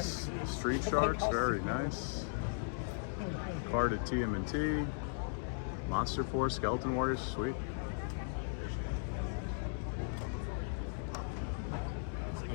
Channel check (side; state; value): right; silent; digital silence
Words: Street Sharks, very nice. Card at TMNT, Monster Force, Skeleton Warriors, sweet. It